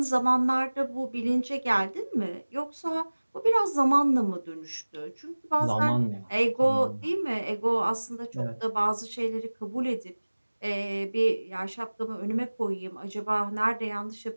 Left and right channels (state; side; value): inverted; both; correlation -1.00